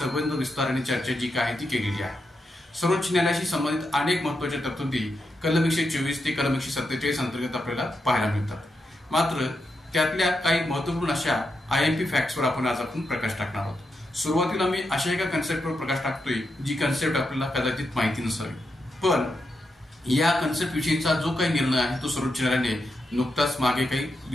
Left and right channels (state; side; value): normal; both; correlation 0.85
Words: विस्ताराने चर्चा जी काय ती केलेली आहे. सर्वोच्च न्यायालयाशी संबंधित अनेक महत्त्वाच्या तरतुदी कलम 124 ते कलम 147 अंतर्गत आपल्याला पाहायला मिळतात. मात्र त्यातल्या काही महत्त्वपूर्ण अशा आयएमपी फॅक्ट्सवर आज आपण प्रकाश टाकणार आहोत. सुरुवातीला मी अशा एका कन्सेप्टवर प्रकाश टाकतोय जी कन्सेप्ट आपल्याला कदाचित माहिती नसावी, पण या कन्सेप्ट विषयीचा जो काही निर्णय आहे तो सर्वोच्च न्यायालयाने नुकताच मागे काही